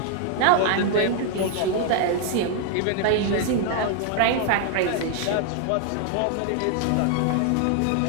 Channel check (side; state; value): both; different; correlation 0.00